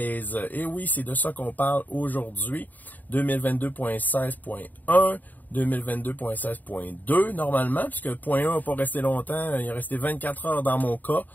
Et oui, c'est de ça qu'on parle aujourd'hui, 2022.16.1, 2022.16.2 normalement, puisque .1 n'a pas resté longtemps, il est resté 24 heures dans mon cas,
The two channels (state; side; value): late; right; 0.084 ms